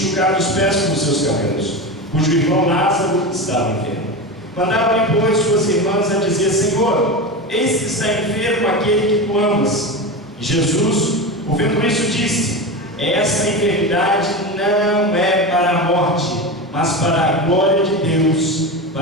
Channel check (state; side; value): normal; both; correlation 0.22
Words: os pés com os seus cabelos, cujo irmão Lázaro estava enfermo. Mandaram-lhe, pois, suas irmãs a dizer: Senhor, eis que está enfermo aquele que tu amas. E Jesus, ouvindo isso, disse: esta enfermidade não é para a morte, mas para a glória de Deus,